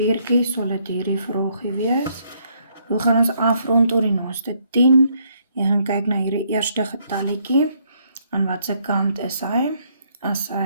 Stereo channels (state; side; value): inverted; both; correlation -0.71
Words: sal dit hierdie vraagie wees. Hoe gaan ons afrond tot die naaste 10? Jy gaan kyk na hierdie eerste getalletjie. Aan watse kant is hy? As